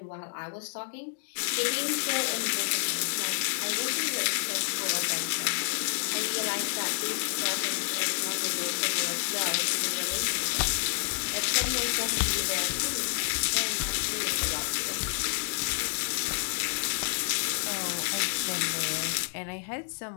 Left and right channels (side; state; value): right; silent; digital silence